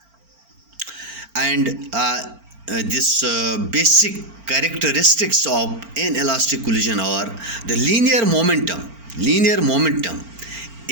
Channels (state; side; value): late; left; 4.4 ms